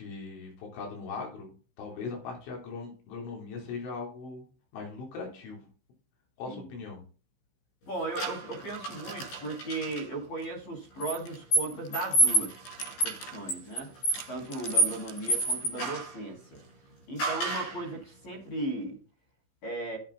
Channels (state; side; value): late; right; 15 ms